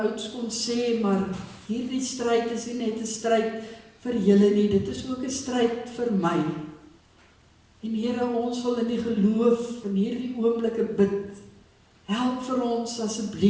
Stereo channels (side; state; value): both; identical; correlation 1.00